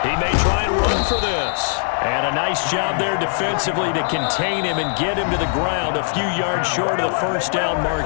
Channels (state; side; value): silent; right; digital silence